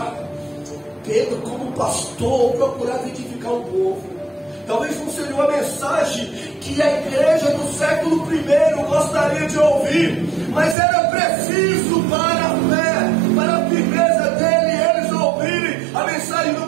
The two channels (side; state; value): left; drops out; at 10.8 s